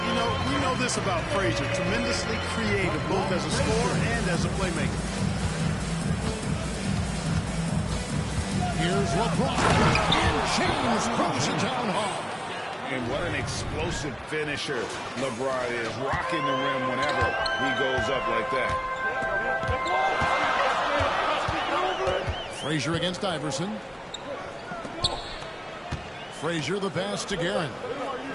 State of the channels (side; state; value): both; identical; correlation 1.00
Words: you know, we know this about Frazier. Tremendously creative, both as a scorer and as a playmaker. Here's LeBron. And James throws it down hard. And what an explosive finisher LeBron is. Rocking the rim whenever he goes up like that. Frazier against Iverson. Frazier the pass to Guerin.